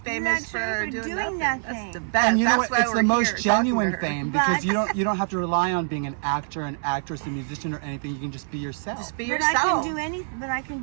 for doing nothing. That's the best. And you know That's what? why It's we're the most here genuine But- talking to her. fame because you don't have to rely on being an actor, an actress, a musician, or anything. You can just be yourself. Just be But yourself. I can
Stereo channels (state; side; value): silent; left; 59 dB below the other